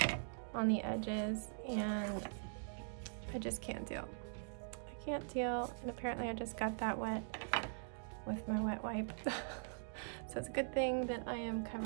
on the edges and I just can't deal. Can't deal, and apparently I just got that wet with my wet wipe. So it's a good thing that I am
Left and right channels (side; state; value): left; silent; digital silence